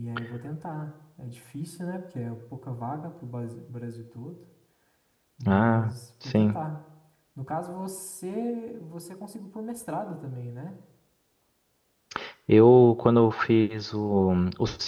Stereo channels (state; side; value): identical; both; correlation 1.00